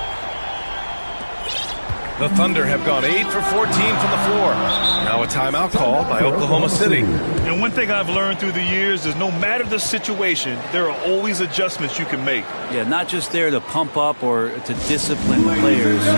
The Thunder have gone 8 for 14 from the floor. Now a timeout call by Oklahoma City. And one thing I've learned through the years is no matter the situation, there are always adjustments you can make. Yeah, not just there to pump up or to discipline the players.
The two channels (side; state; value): both; inverted; correlation -1.00